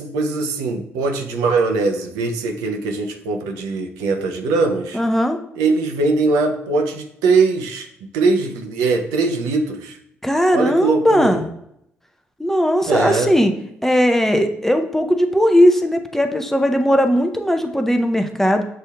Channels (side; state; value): both; normal; correlation 0.80